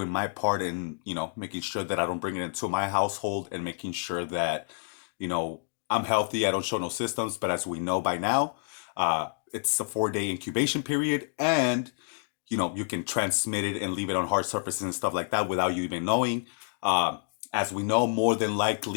my part in, making sure that I don't bring it into my household and making sure that, I'm healthy. I don't show no symptoms. But as we know by now, it's a 4-day incubation period, and you can transmit it and leave it on hard surfaces and stuff like that without you even knowing. As we know, more than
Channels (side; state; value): right; silent; digital silence